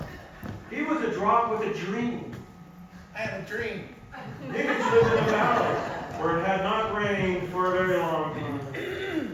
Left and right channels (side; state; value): both; identical; correlation 1.00